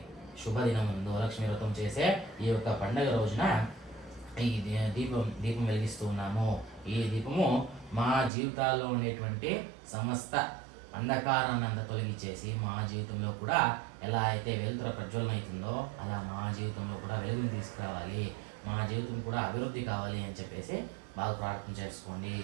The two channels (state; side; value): drops out; left; at 8.3 s